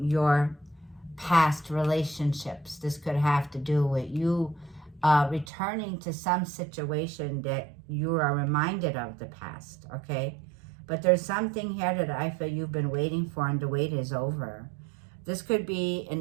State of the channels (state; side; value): drops out; left; at 5.5 s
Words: past relationships. This could have to do with you returning to some situation that you are reminded of the past, okay? But there's something here that I feel you've been waiting for, and the wait is over. This could be